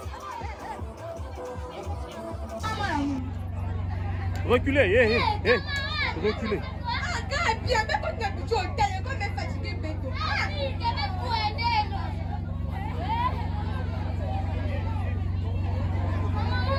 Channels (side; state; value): both; identical; correlation 1.00